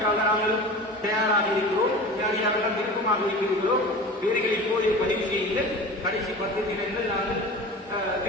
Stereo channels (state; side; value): normal; both; correlation 0.35